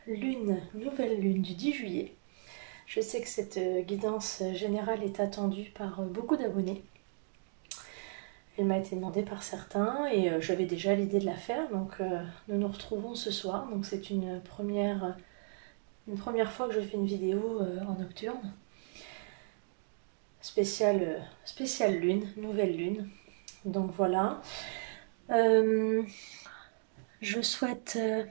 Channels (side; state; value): left; silent; digital silence